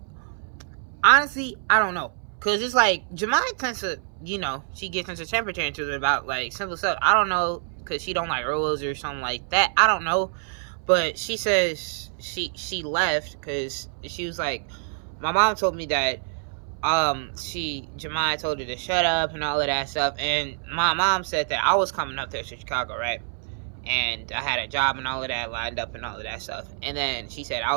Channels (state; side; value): silent; left; 60 dB below the other